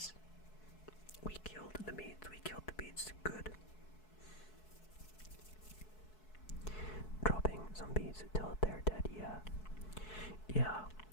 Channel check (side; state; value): right; late; 4.7 ms